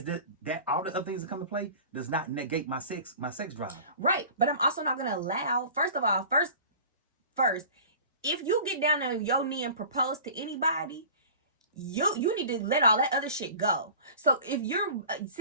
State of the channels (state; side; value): inverted; both; correlation -0.41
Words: that all the other things that come into play does not negate my sex drive. Right. But I'm also not gonna allow, first, if you get down on your knee and propose to anybody, you need to let all that other shit go. So if you're